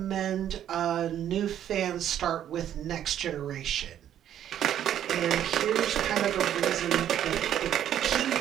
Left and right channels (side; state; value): left; quieter; 10.6 dB